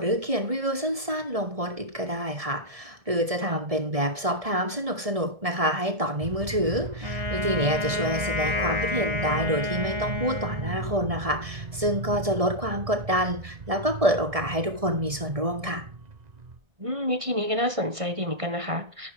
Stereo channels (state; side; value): late; left; 1.7 ms